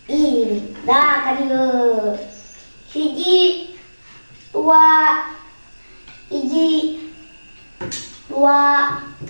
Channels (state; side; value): inverted; both; correlation -1.00